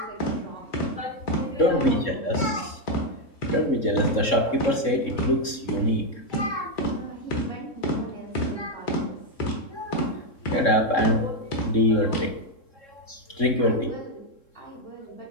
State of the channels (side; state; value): right; late; 3.7 ms